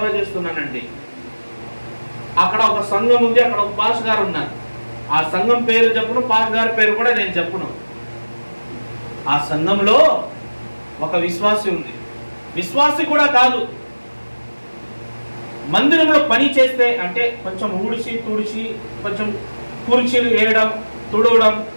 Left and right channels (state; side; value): inverted; both; correlation -1.00